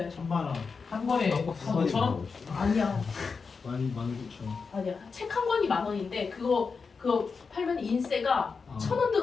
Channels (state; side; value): quieter; right; 5.0 dB